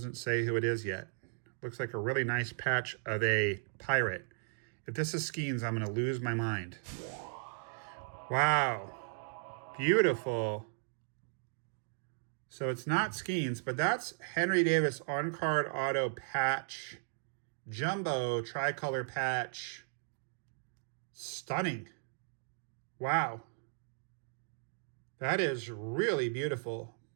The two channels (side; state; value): left; silent; digital silence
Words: say who it is yet. Looks like a really nice patch of a pirate. If this is Skeens, I'm going to lose my mind. Wow. Beautiful. So it's not Skeens, but that's Henry Davis on-card auto patch. Jumbo tricolor patch. Stunning. Wow. That is really beautiful.